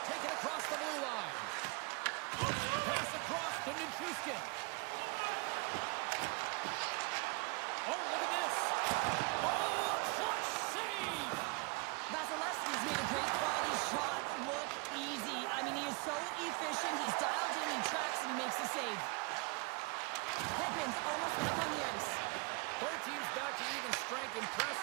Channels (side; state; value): left; quieter; 29.3 dB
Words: take it across the blue line. Pass across to Nichushkin. Oh, look at this. Oh, a clutch save! Vasilevsky's made a great quality shot look easy. I mean, he is so efficient. He's dialed in, he tracks, and he makes the save. Hedman's almost back on the ice. Both teams back to even strength.